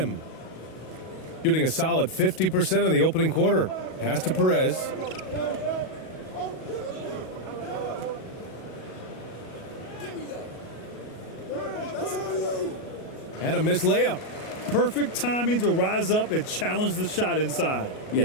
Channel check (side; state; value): right; late; 37 ms